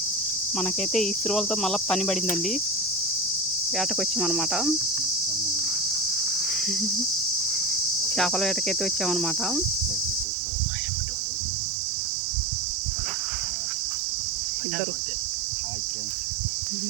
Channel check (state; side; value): drops out; left; at 10.2 s